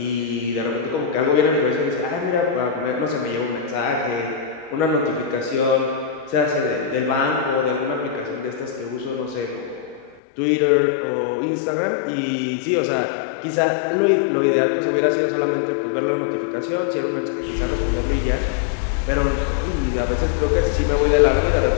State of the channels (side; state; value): right; drops out; at 10.2 s